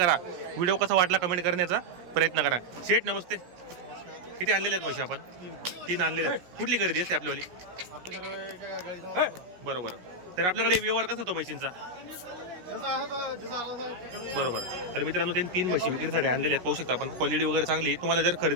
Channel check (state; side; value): late; left; 17 ms